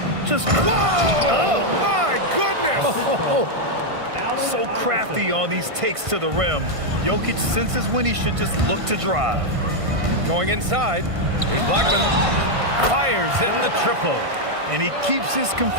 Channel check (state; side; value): late; left; 1.5 ms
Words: Just Whoa! Oh, my goodness! so crafty on these takes to the rim. Jokic senses when he should just look to drive. Going inside. Here's Blackman. Fires in the triple. And he keeps his